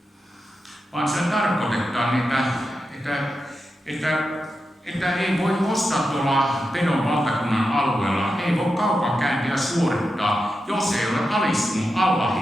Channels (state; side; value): normal; both; correlation 0.89